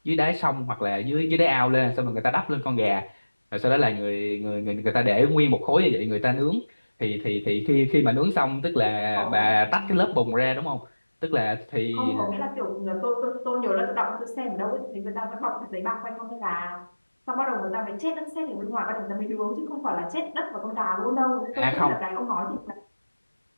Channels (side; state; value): both; inverted; correlation -1.00